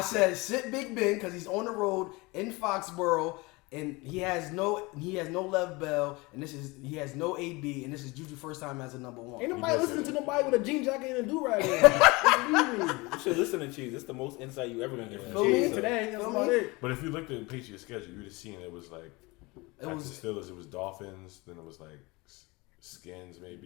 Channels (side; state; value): right; quieter; 24.4 dB